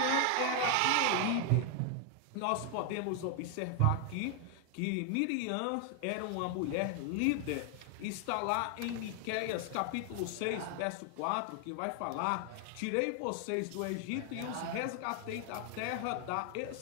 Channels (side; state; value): both; different; correlation 0.00